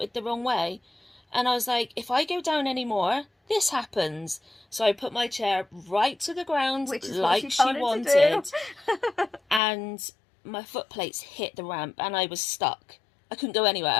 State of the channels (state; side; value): drops out; right; at 9.6 s